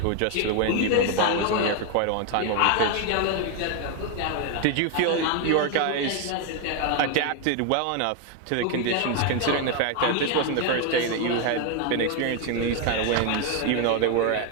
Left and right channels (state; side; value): different; both; correlation 0.01